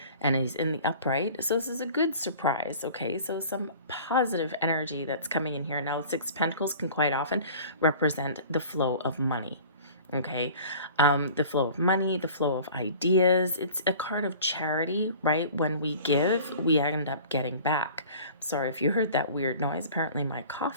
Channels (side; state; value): both; inverted; correlation -0.44